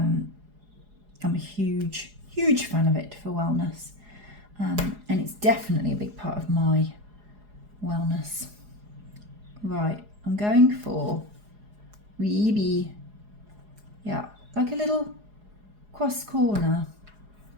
a huge fan of it for wellness, and it's definitely a big part of my wellness. Right, I'm going for Weeby. Yeah, like a little cross corner.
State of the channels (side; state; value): left; late; 4.8 ms